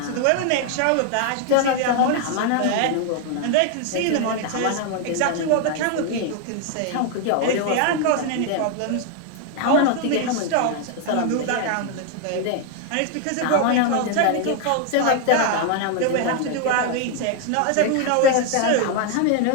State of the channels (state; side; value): different; both; correlation 0.00